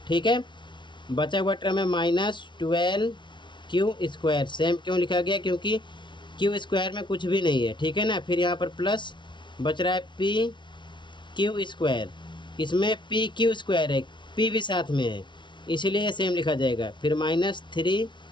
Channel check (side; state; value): right; late; 0.23 ms